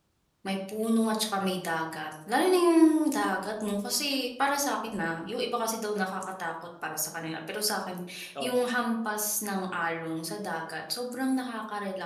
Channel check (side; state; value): both; identical; correlation 1.00